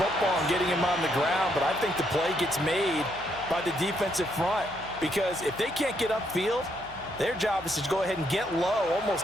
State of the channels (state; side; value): noise; left; hum, 22 dB below the sound